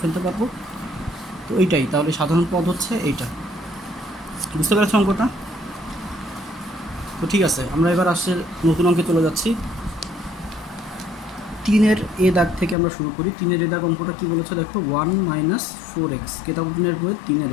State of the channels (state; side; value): drops out; right; at 12.8 s